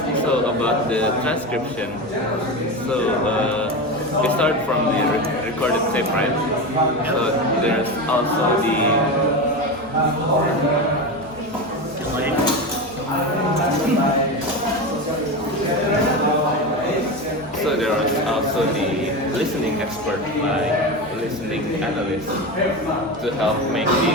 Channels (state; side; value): normal; both; correlation 0.21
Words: So about the transcription, so we start from the recorded tape, right? So there's also the so there is also the listening expert, like listening analyst, to help make